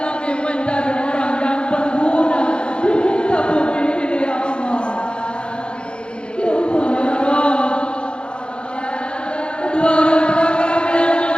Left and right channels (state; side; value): late; right; 0.054 ms